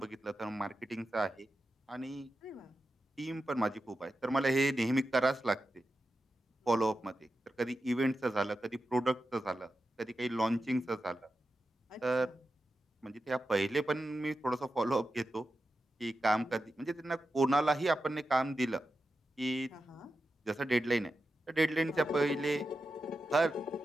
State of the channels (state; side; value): normal; both; correlation 0.90